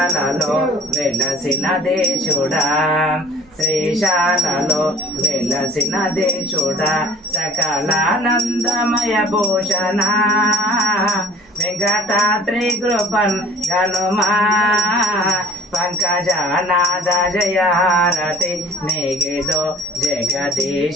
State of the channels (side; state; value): both; normal; correlation 0.46